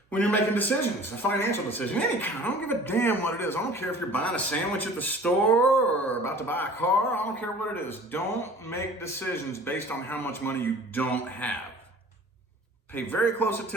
you're making decisions, a financial decision, any kind, I don't give a damn what it is. I don't care if you're buying a sandwich at the store or about to buy a car. I don't care what it is. Don't make decisions based on how much money you don't have. Pay very close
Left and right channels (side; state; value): both; normal; correlation 0.46